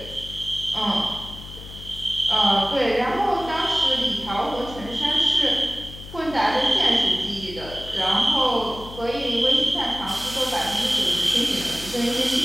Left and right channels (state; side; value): noise; left; hum, 14 dB below the sound